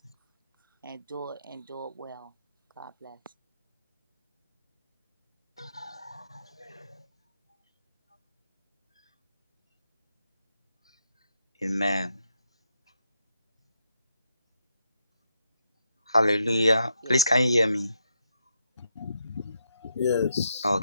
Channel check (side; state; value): both; inverted; correlation -0.80